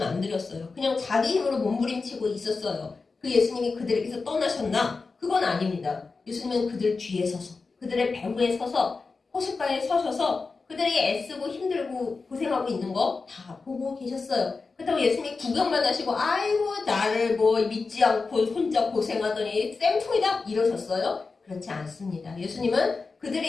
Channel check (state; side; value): quieter; right; 4.3 dB